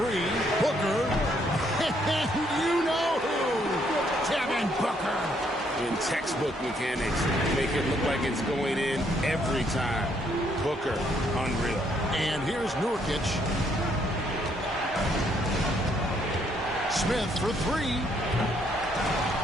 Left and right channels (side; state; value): both; normal; correlation 0.70